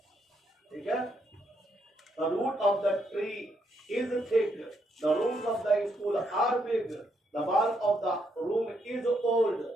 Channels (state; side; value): normal; both; correlation 0.76